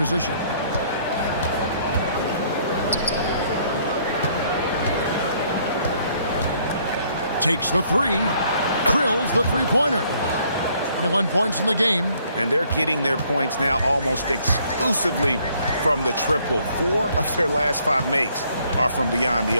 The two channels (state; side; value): inverted; both; correlation -0.65